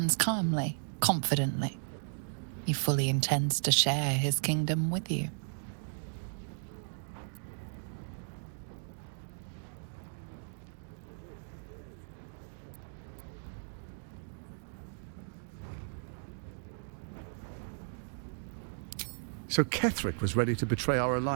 calmly, confidently. He fully intends to share his kingdom with you. So Ketheric was ready to betray our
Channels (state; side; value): silent; left; digital silence